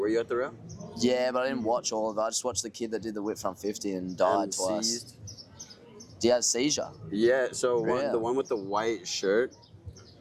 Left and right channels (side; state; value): both; identical; correlation 1.00